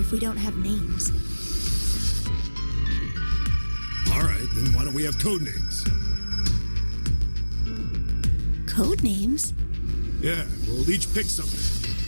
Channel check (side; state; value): both; inverted; correlation -1.00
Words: we don't have names. All right, then why don't we have code names? Code names? Yeah, we'll each pick something.